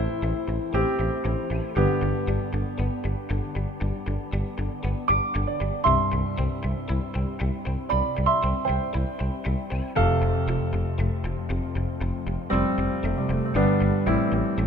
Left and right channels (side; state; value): both; normal; correlation 0.67